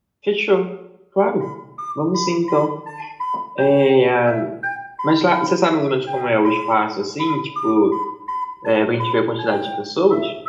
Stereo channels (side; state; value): both; identical; correlation 1.00